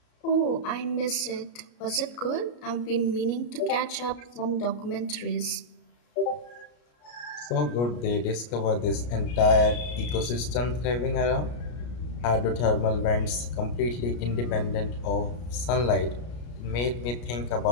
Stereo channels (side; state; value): right; late; 33 ms